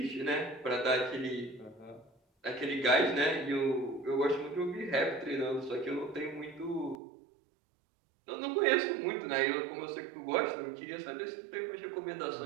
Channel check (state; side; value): drops out; left; at 7.0 s